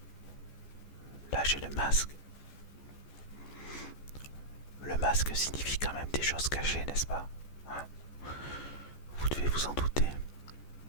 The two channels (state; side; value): late; right; 14 ms